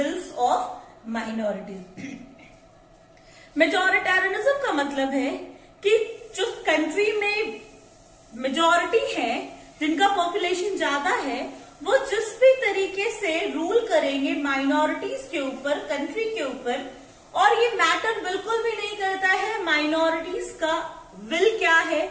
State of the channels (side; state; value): both; identical; correlation 1.00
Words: of minorities. Majoritarianism का मतलब है कि जो country में majority है, जिनका population ज्यादा है, वो जिस भी तरीके से रूल करेंगे माइनॉरिटीज के ऊपर, कंट्री के ऊपर, और ये मैटर बिल्कुल भी नहीं करता है माइनॉरिटीज का विल क्या है,